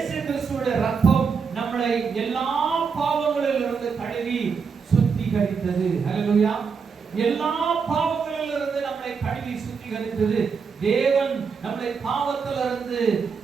கிறிஸ்துவுடைய ரத்தம் நம்மளை எல்லா பாவங்களிலிருந்து கழுவி சுத்திகரித்தது. ஹல்லேலூயா. எல்லா பாவங்களிலிருந்து நம்மளை கழுவி சுத்திகரித்தது. தேவன் நம்மளை பாவத்திலிருந்து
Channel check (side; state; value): left; quieter; 5.7 dB